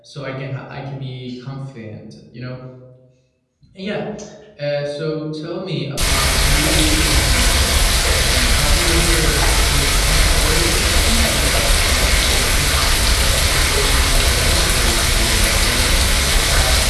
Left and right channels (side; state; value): both; identical; correlation 1.00